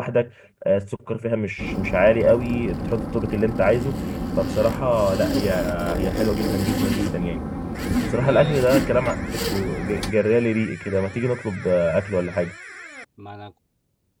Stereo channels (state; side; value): identical; both; correlation 1.00